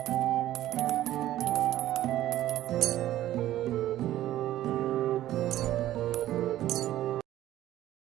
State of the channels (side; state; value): left; quieter; 13.8 dB